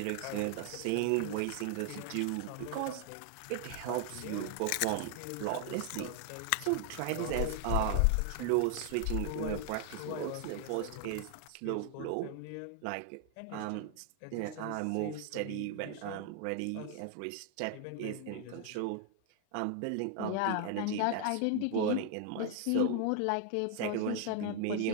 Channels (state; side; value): different; both; correlation 0.00